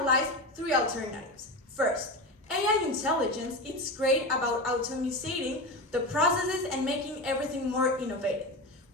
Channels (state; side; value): normal; both; correlation 0.22